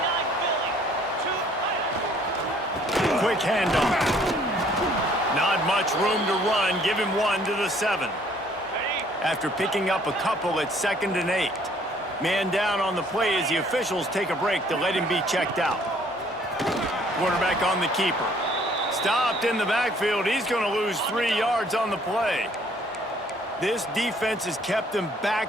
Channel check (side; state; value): both; normal; correlation 0.60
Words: Quick handoff. Not much room to run. Give him 1 to the 7. After picking up a couple at 2nd and 8. Man down on the play as the officials take a break to let him be checked out. Quarterback on the keeper. Stopped in the backfield. He's going to lose 3 yards on the play. This defense has kept them